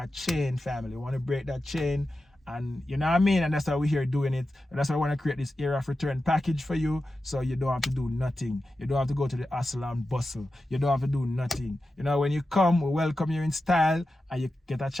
chain, family. We want to break that chain, and you know what I mean? And that's why we're here doing it. And that's why I want to create this era of return package for you, so you don't have to do nothing. You don't have to go to the hustle and bustle. You don't have to do nothing. You know, when you come, we welcome you in style, and you get a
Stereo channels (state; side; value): normal; both; correlation 0.92